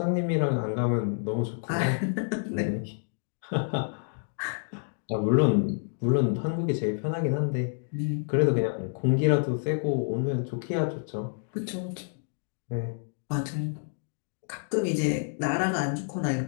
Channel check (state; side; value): silent; right; digital silence